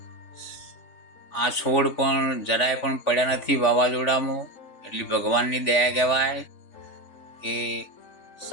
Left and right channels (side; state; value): right; late; 3.4 ms